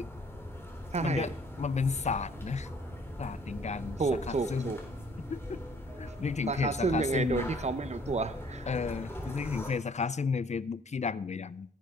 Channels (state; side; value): normal; both; correlation 0.59